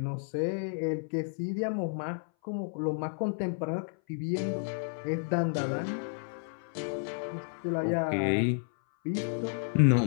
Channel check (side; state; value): right; silent; 57 dB below the other